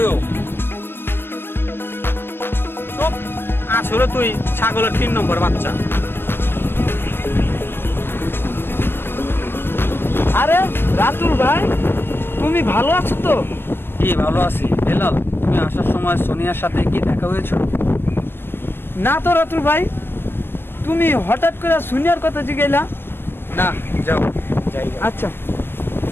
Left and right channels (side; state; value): right; late; 0.10 ms